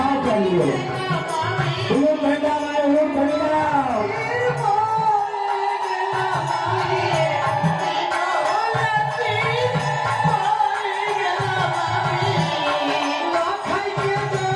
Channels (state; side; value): identical; both; correlation 1.00